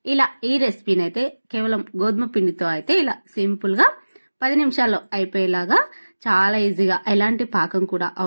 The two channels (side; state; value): both; inverted; correlation -1.00